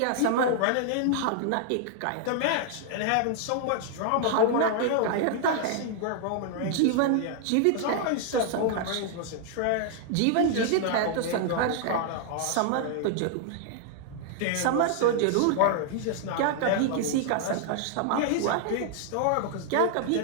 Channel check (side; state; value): both; different; correlation -0.01